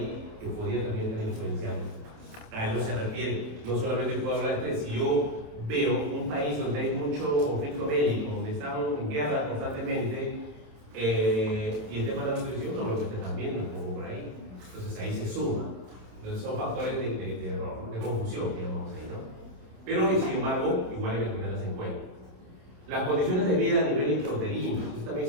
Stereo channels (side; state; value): left; late; 27 ms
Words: que podría también estar influenciando. A eso se refiere. No solamente puedo hablar de estrés, si yo veo un país donde hay mucho conflicto bélico, donde estamos en guerra constantemente, y el tema de la nutrición no lo que ustedes están viendo como por ahí. Entonces ahí se suma. Entonces son factores de error, de confusión, digamos ahí, ¿no? Pero sin embargo, igual hay que tenerlas en cuenta. Las condiciones de vida a nivel intrauterino, esto también